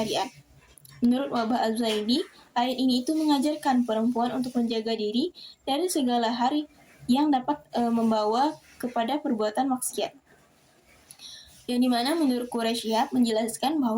Menurut Wahbah Az-Zuhaili, ayat ini itu mengajarkan perempuan untuk menjaga diri dari segala hal yang dapat membawa kepada perbuatan maksiat. Yang dimana menurut Quraisy Shihab menjelaskan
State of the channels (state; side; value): identical; both; correlation 1.00